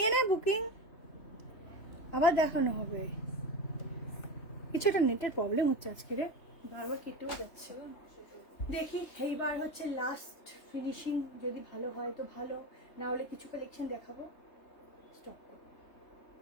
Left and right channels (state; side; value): late; right; 3.3 ms